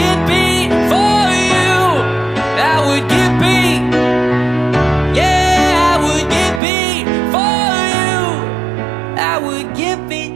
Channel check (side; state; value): left; drops out; at 6.6 s